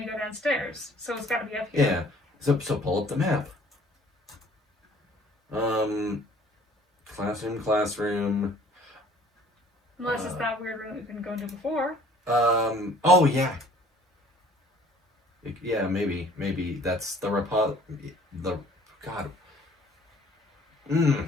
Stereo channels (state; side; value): normal; both; correlation 0.54